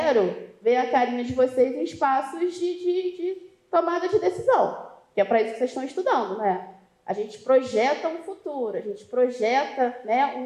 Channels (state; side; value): identical; both; correlation 1.00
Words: ver a carinha de vocês em espaços de tomada de decisão, que é para isso que vocês estão estudando, né? A gente projeta um futuro, a gente projeta, né,